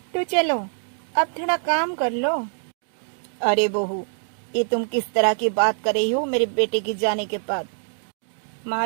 तो चलो अब थोड़ा काम कर लो। अरे बहू, ये तुम किस तरह की बात कर रही हो मेरे बेटे के जाने के बाद? माँ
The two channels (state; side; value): silent; left; 58 dB below the other